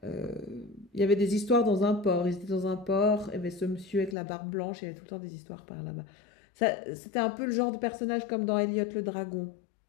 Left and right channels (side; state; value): right; drops out; at 4.2 s